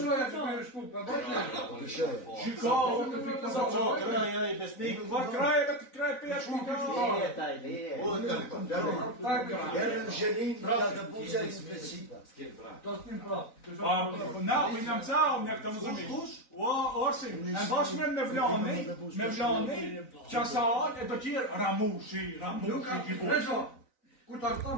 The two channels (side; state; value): right; late; 4.0 ms